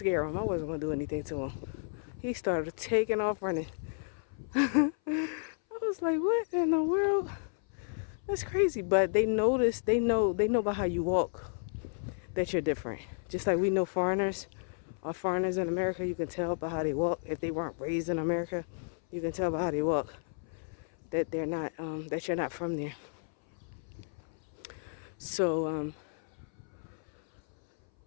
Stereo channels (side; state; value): right; silent; 56 dB below the other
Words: him. I wasn't going to do anything to him. He started taking off running. I was like, what in the world? That's crazy. But they notice, they know about how you walk, that you're different. Just like we know foreigners in America, you can tell by how they walk. If they weren't raised in America, you can tell by how they walk that they're not, that you're not from there. So